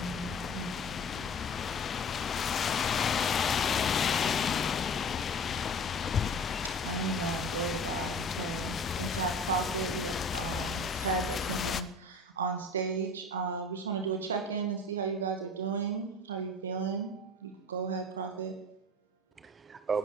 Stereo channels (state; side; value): normal; both; correlation 0.39